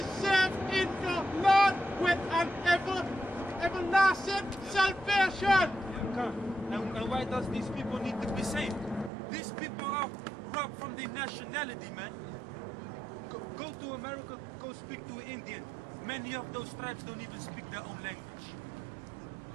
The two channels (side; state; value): left; drops out; at 9.1 s